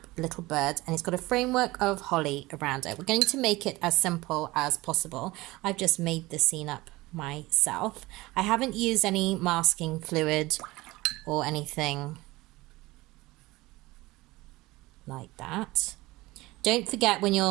little bird, and it's got a framework of holly around it. We're going to make it as simple as possible. I've just made the scene up myself. I haven't used any masking fluid or anything like that. Don't forget when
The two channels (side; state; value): left; quieter; 20.2 dB